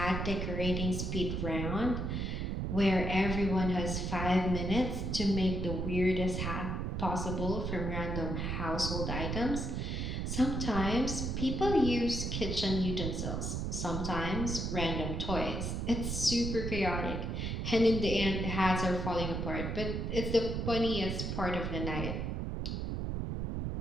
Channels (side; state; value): right; noise; rumble, 2 dB below the sound